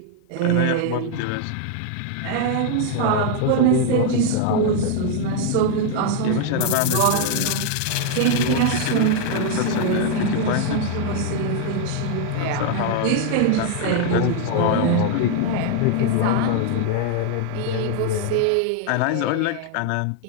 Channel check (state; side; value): different; both; correlation 0.00